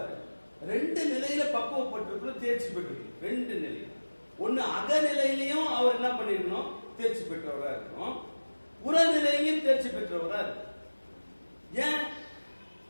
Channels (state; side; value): inverted; both; correlation -1.00